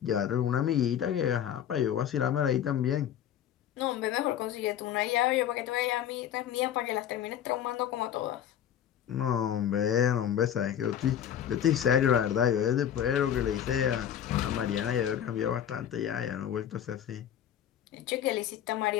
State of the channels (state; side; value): quieter; right; 10.0 dB